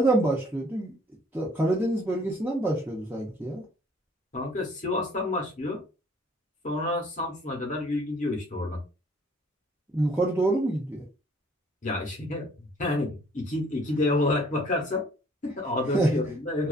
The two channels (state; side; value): normal; both; correlation 0.58